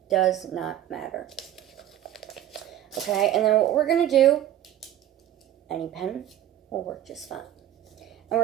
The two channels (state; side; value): quieter; left; 12.2 dB